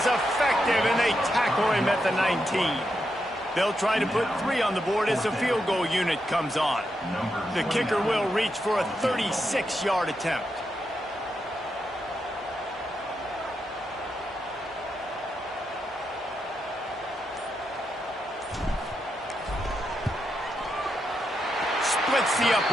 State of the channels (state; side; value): normal; both; correlation 0.84